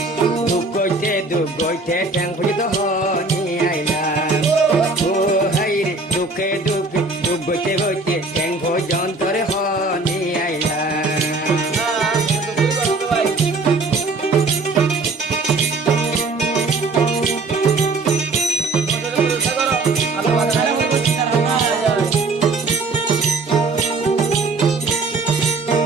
দুঃখ গইতে ঠ্যাং পর্যন্ত হনি আইলাম ও হাইরে দুঃখে দুঃখে দুঃখ গইতে গইতে ঠ্যাং পর্যন্ত হনি আইলাম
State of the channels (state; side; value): quieter; left; 3.5 dB